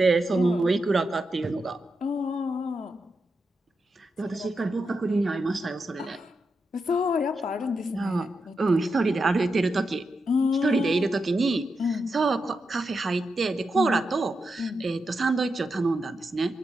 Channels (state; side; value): normal; both; correlation 0.87